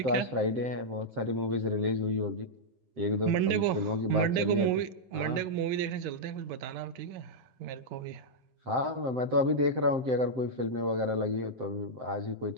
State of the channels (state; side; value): late; left; 7.5 ms